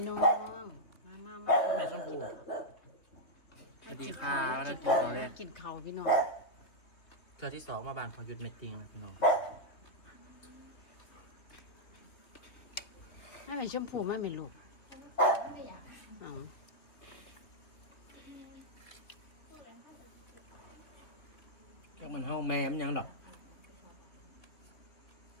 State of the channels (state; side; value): late; right; 2.9 ms